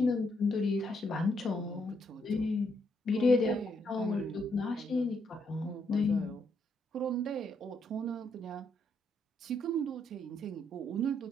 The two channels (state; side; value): normal; both; correlation 0.75